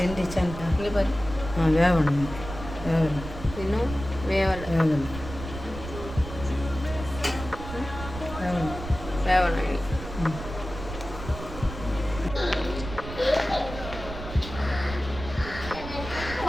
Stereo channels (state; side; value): noise; right; rumble, 10 dB below the sound